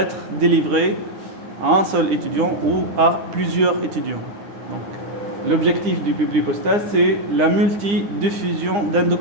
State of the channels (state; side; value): late; left; 9.8 ms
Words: délivrée à un seul étudiant ou à plusieurs étudiants. Donc, l'objectif du public postage, c'est la multidiffusion d'un